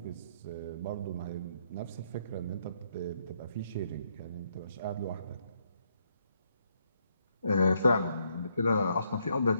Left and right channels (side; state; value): both; inverted; correlation -0.74